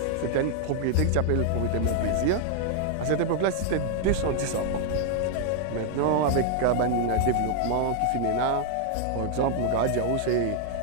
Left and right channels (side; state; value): both; different; correlation 0.00